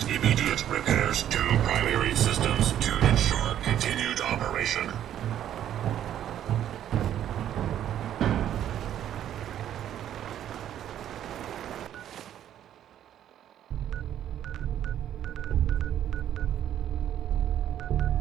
immediate repairs to primary systems.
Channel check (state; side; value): quieter; left; 10.9 dB